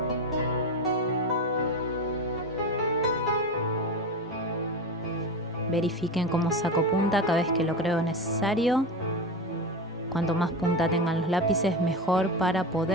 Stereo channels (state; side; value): normal; both; correlation 0.22